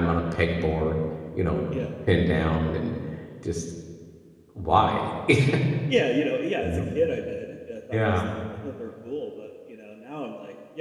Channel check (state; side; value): identical; both; correlation 1.00